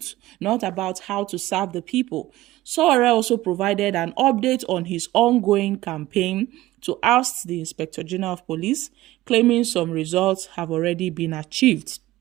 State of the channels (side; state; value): left; quieter; 16.5 dB